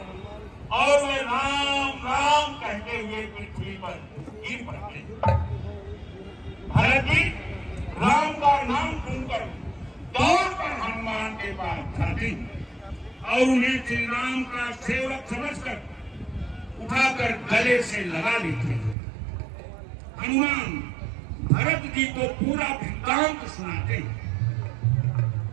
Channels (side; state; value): left; drops out; at 18.9 s